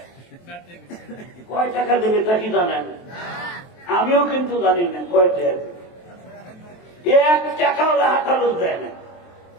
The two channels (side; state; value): right; late; 23 ms